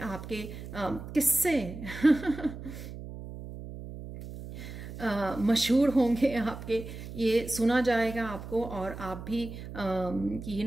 किस्से मशहूर होंगे आपके, ये सुना जाएगा आपको। और आप भी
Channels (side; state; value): right; noise; hum, 11 dB below the sound